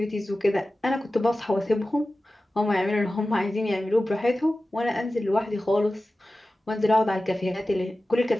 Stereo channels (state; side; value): normal; both; correlation 0.95